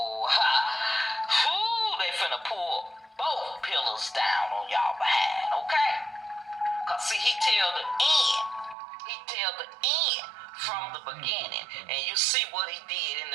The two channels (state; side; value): drops out; left; at 8.8 s